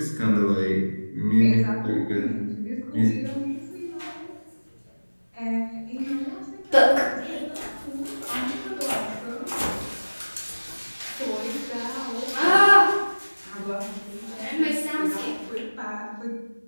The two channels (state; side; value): inverted; both; correlation -1.00